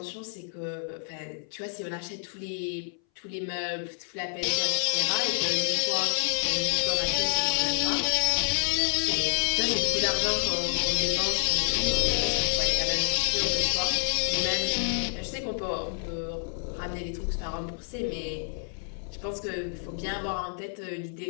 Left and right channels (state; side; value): silent; right; 59 dB below the other